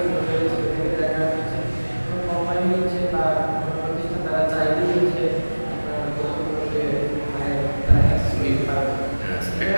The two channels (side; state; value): both; inverted; correlation -1.00